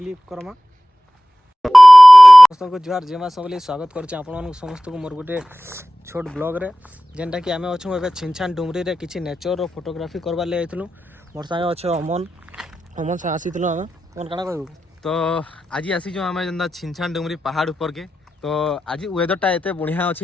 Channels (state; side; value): normal; both; correlation 0.95